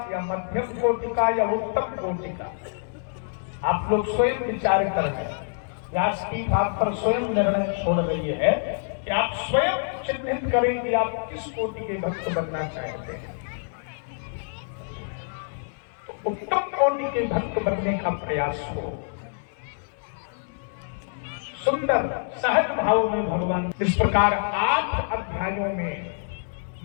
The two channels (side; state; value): right; silent; 60 dB below the other